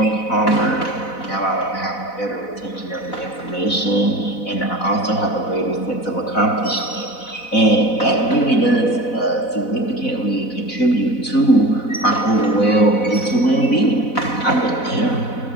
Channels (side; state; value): right; late; 4.0 ms